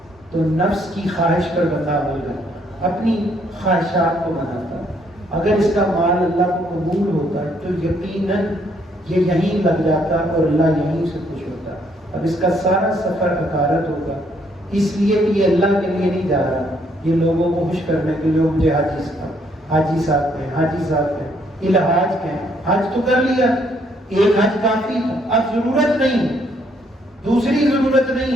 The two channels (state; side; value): normal; both; correlation 0.69